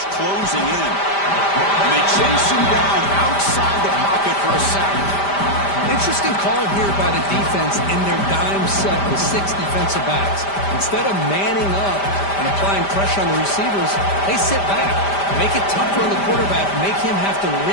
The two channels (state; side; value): late; right; 5.1 ms